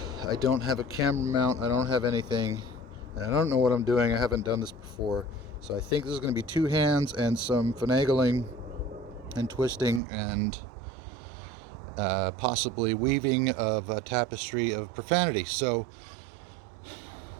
I don't have a camera mount. I don't have anything. And I don't know what I'm doing. I haven't done this before. So I think this is going to be two hands and some finagling and twisting and possibly weaving of a tapestry of profanity. So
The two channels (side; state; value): left; drops out; at 10.0 s